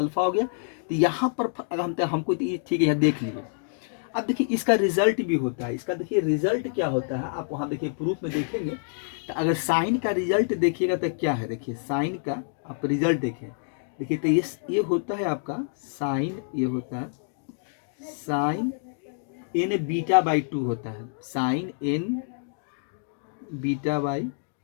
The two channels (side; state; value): right; silent; digital silence